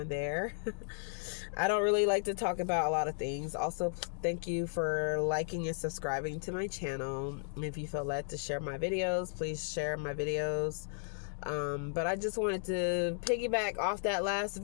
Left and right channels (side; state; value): right; silent; digital silence